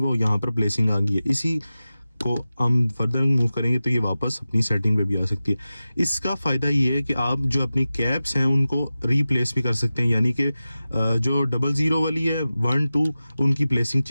यहाँ पर प्लेसिंग आ गई है। इसी को हम फर्दर मूव करेंगे तो ये वापस अपनी सेटिंग पे भी आ सकती है। इसका फ़ायदा ये है कि आप जो अपनी कैप्स हैं उनको रिप्लेस भी कर सकते हैं, यानी कि जो 00 वाली है 1 2 उनकी प्लेसिंग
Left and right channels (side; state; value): both; inverted; correlation -0.95